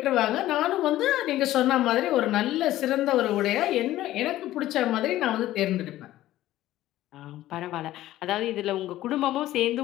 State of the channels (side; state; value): right; quieter; 14.7 dB